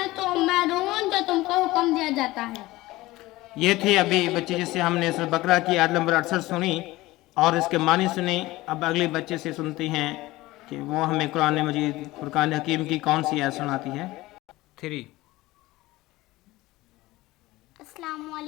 تؤمرون جو تم کو حکم دیا جاتا ہے۔ یہ تھے ابھی بچے جس سے ہم نے سورہ بقرہ کی آیت نمبر 68 سنی اور اس کے معنی سنے۔ اب اگلے بچے سے سنتے ہیں کہ وہ ہمیں قرآن مجید فرقان حکیم کی کون سی آیت سناتی ہے۔ 3 السلام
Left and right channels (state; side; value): quieter; right; 18.8 dB